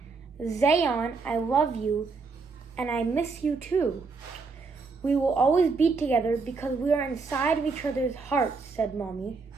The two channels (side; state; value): left; quieter; 4.5 dB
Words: "Zayan, I love you, and I miss you too. We will always be together because we are inside of each other's hearts," said Mommy.